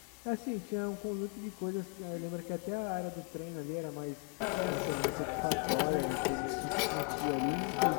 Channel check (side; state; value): right; quieter; 37.6 dB